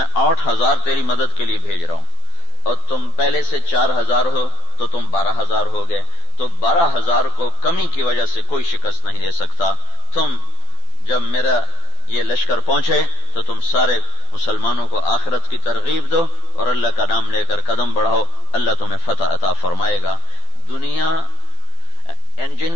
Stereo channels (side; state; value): right; late; 12 ms